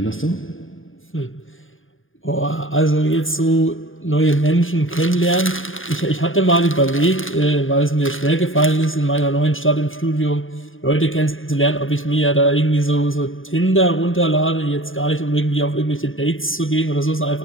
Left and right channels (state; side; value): late; right; 0.58 ms